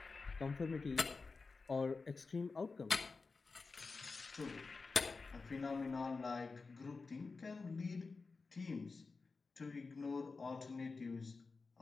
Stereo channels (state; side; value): quieter; right; 4.2 dB